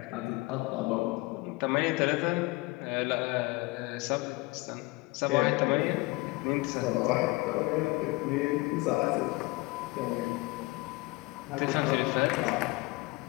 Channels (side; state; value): right; quieter; 23.3 dB